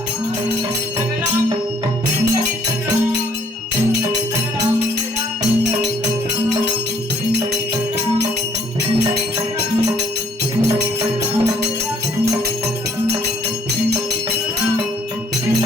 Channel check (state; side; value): normal; both; correlation 0.63